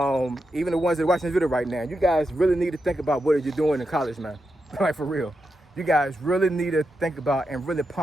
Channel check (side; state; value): both; normal; correlation 0.87